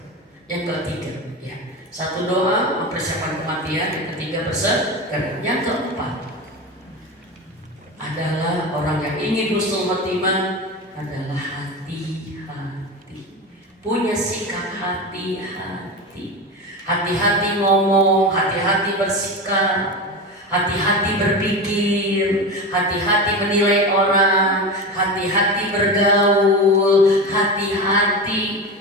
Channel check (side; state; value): both; normal; correlation 0.23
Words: Yang ketiga, ya, satu doa mempersiapkan kematian. Yang ketiga bersedekah. Yang keempat adalah orang yang ingin husnul khotimah adalah hati-hati. Punya sikap hati-hati. Hati-hati ngomong, hati-hati bersikap, hati-hati berpikir, hati-hati menilai orang, hati-hati bergaul, hati-hati